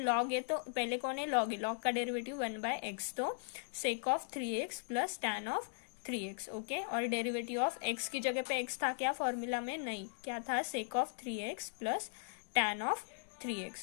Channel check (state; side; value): silent; right; digital silence